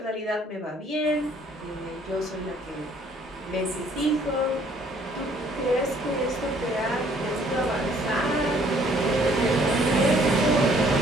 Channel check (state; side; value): normal; both; correlation 0.61